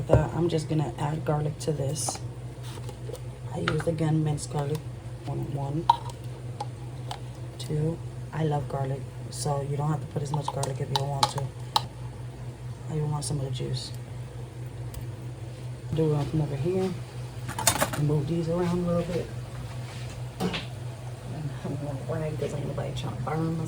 that. I'm just gonna add garlic to this. I used, again, minced garlic. 1, 2. I love garlic, so you don't have to put as much garlic if you don't want to. I even want some of the juice. Do it from over here and move these around a little bit. And I'm gonna rag because ain't nobody trying to burn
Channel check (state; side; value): identical; both; correlation 1.00